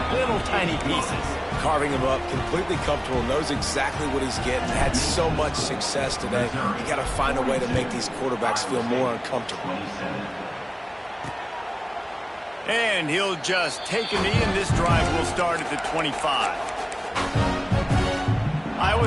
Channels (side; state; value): both; identical; correlation 1.00